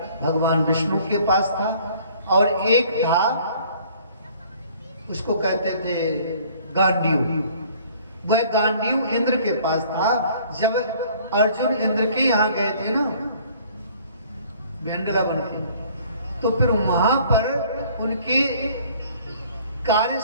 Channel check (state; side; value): inverted; both; correlation -0.55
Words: भगवान विष्णु के पास था, और एक था उसको कहते थे गांडीव। वह गांडीव इंद्र के पास था। जब अर्जुन इंद्र के यहाँ गए थे ना भेंडला बन के, तो फिर वहां पर उनके कार्य